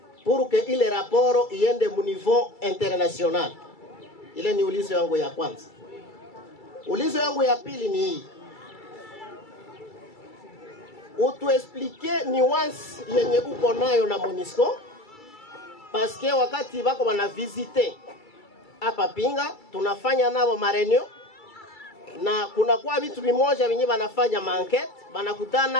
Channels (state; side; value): late; right; 2.3 ms